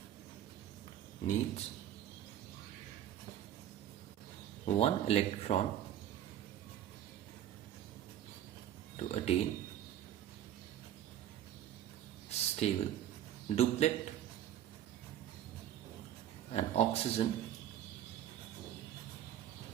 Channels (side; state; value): left; quieter; 11.3 dB